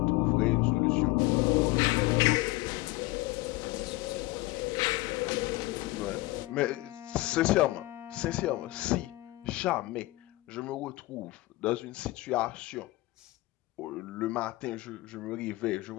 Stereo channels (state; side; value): quieter; right; 19.7 dB